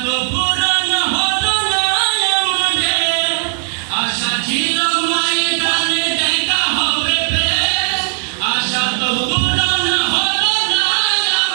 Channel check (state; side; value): silent; left; 69 dB below the other